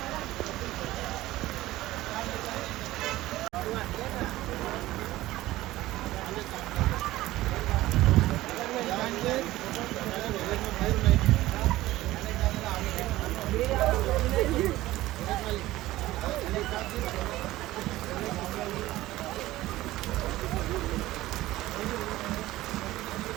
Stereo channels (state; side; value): quieter; left; 16.7 dB